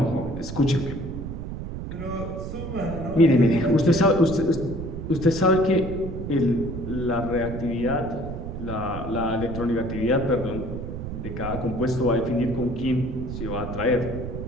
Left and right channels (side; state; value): right; noise; rumble, 7 dB below the sound